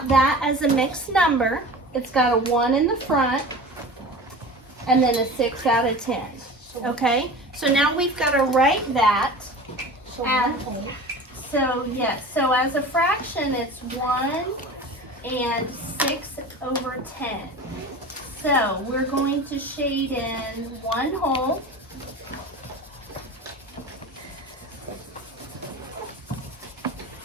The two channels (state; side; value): normal; both; correlation 0.35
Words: that as a mixed number, it's got a 1 in the front and then a 6 out of 10. Okay? So now we've got to write that as, so yes, so as a fraction it's 1 and 6/10. So we're going to shade in one whole.